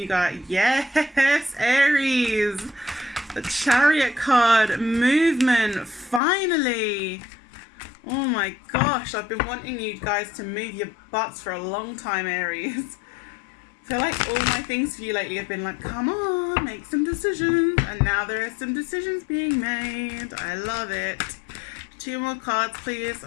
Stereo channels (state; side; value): drops out; right; at 6.2 s